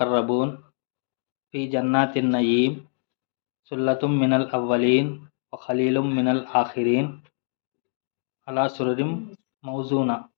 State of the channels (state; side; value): silent; right; digital silence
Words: फ़ी जन्नातिन नईम सुल्लतुम मिनल अव्वलीन व ख़लीलुम मिनल आखिरीन अला सुरुरिम मौज़ूना।